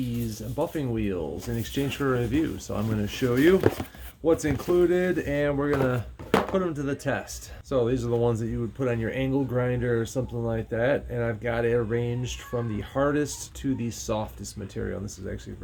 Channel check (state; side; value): identical; both; correlation 1.00